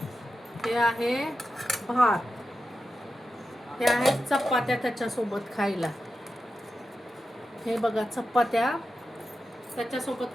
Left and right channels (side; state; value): both; normal; correlation 0.91